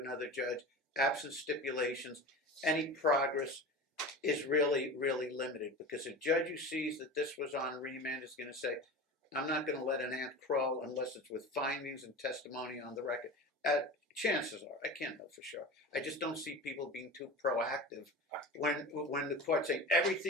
another judge. Absent stipulations, any progress is really, really limited because a judge who sees that this was on remand is going to say, I'm not going to let an ant crawl unless it's with findings and testimony on the record. chances are, I can't know for sure. I just don't see people being too proactive when the court's saying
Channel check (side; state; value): both; normal; correlation 0.31